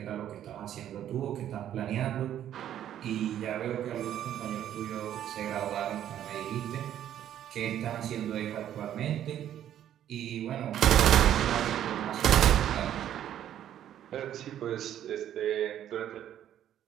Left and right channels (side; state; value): left; quieter; 11.0 dB